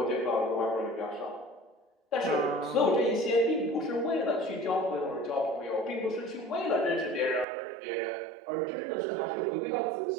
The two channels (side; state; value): left; drops out; at 7.5 s